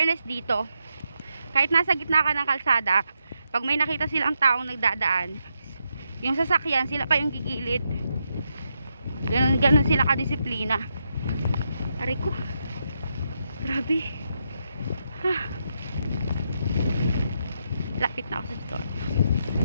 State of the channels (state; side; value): inverted; both; correlation -0.82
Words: dito, kahit nasa gitna ka ng kalsada, pag may nakita silang taong nagdadaan, yung sasakyan, sila pa yung gigilid. Ganun sila kadisiplina. Aray ko. Grabe. Lapit na ako sa store.